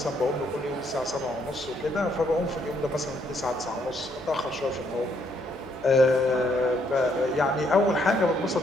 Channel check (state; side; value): normal; both; correlation 0.71